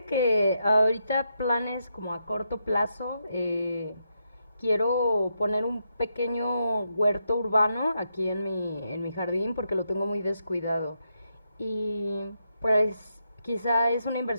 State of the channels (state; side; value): inverted; both; correlation -0.82